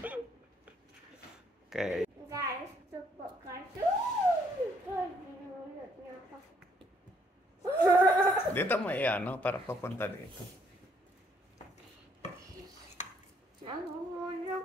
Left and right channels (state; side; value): normal; both; correlation 0.68